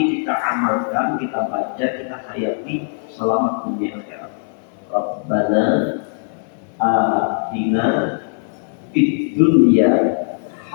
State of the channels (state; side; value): silent; right; digital silence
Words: kita amalkan, kita baca, kita hayati, selamat dunia akhirat. Rabbana atina fid dunya